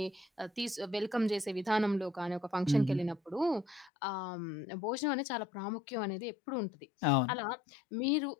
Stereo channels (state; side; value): drops out; right; at 3.9 s